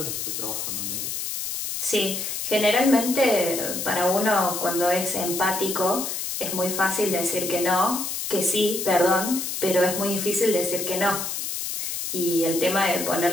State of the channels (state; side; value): noise; left; hiss, 4 dB below the sound